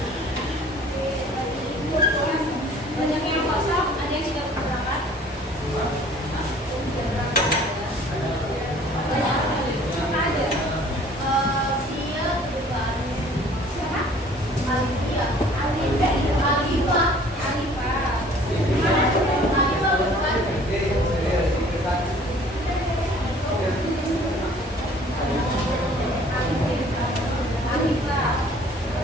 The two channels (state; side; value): normal; both; correlation 0.52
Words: yang kosong, ada yang sudah berangkat.